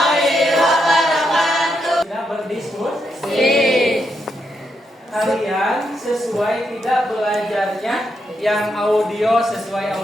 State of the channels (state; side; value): normal; both; correlation 0.81